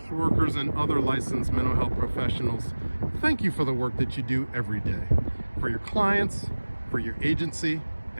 workers and other licensed mental health professionals, thank you for the work that you do every day. For your clients, for your agency,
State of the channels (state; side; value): inverted; both; correlation -1.00